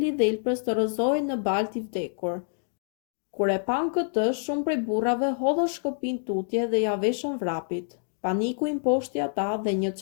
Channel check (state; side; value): silent; right; digital silence